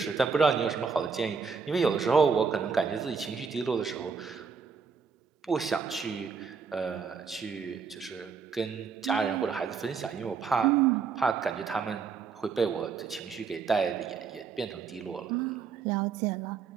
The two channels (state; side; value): quieter; left; 5.7 dB